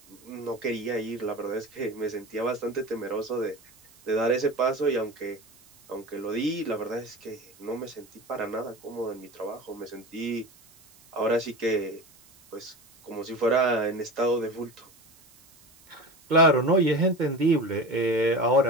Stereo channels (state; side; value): noise; right; hiss, 27 dB below the sound